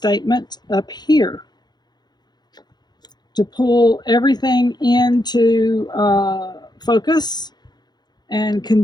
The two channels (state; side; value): late; right; 0.20 ms